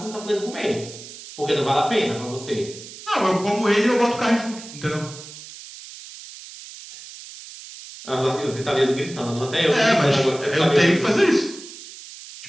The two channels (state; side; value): noise; right; hiss, 15 dB below the sound